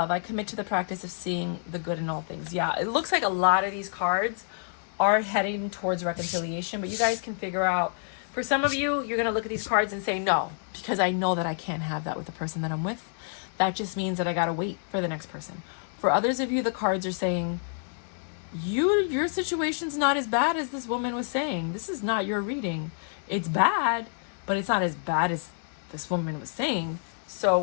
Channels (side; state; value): right; silent; digital silence